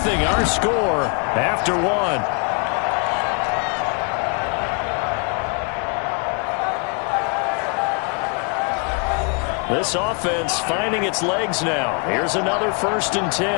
our score after 1. This offense finding its legs now. Here's another 1st and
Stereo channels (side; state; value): right; quieter; 36.9 dB